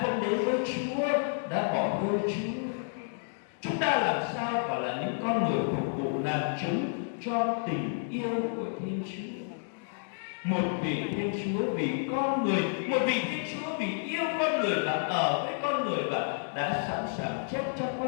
không đến với Chúa, đã bỏ rơi Chúa. Chúng ta làm sao phải là những con người phục vụ làm chứng cho tình yêu của Thiên Chúa. Một vị Thiên Chúa vì con người, một vị Thiên Chúa vì yêu con người và ở với con người và đã sẵn sàng chết cho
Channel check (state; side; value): silent; right; digital silence